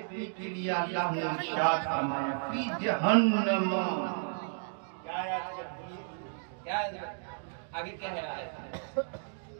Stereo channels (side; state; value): left; silent; digital silence